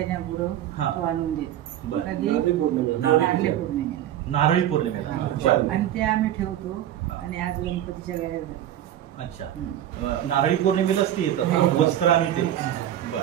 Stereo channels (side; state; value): left; quieter; 11.7 dB